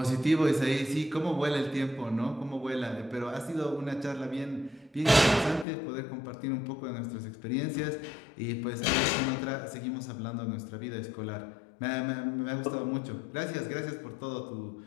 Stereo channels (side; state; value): right; drops out; at 5.7 s